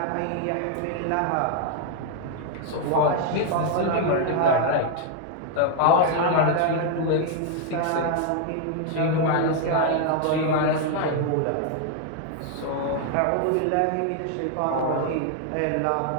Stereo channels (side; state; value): both; different; correlation 0.00